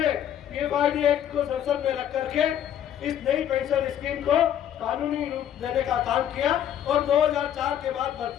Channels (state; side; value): quieter; right; 10.2 dB